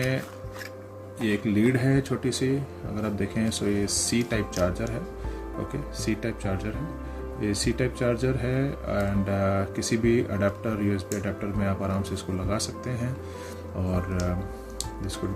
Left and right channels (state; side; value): identical; both; correlation 1.00